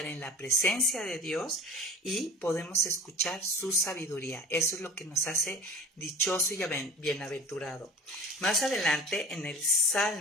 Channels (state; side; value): normal; both; correlation 0.39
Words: en la presencia de Dios, y podemos escuchar su sabiduría. Eso es lo que nos hace dichoso y bienaventurado. Más adelante, en el